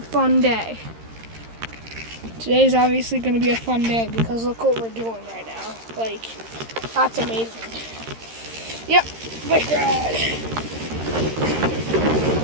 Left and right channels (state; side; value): late; left; 13 ms